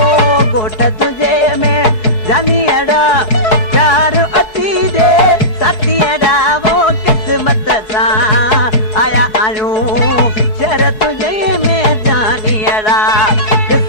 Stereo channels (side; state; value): right; late; 4.7 ms